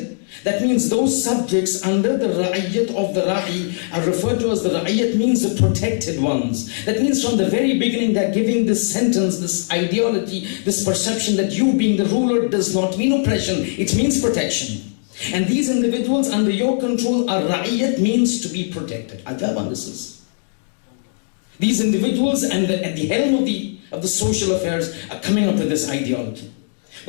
That means those subjects under the Ra'iyyat of the Ra'i are referred to as the Ra'iyyat means the protected ones. That means from the very beginning they're giving this sentence, this ideology, this perception that you being the ruler does not mean oppression, it means protection. And these individuals under your control are Ra'iyyat means to be protected. Ajab this is. These individuals and at the helm of the social affairs are coming up with this ideology.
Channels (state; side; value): silent; right; digital silence